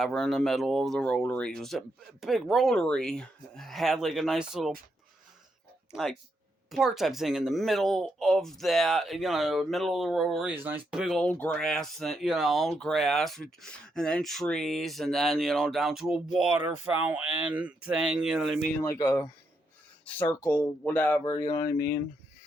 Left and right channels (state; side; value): normal; both; correlation 0.80